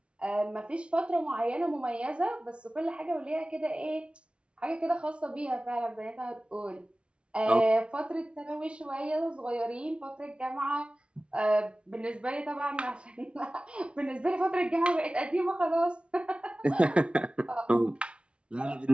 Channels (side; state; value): left; late; 0.059 ms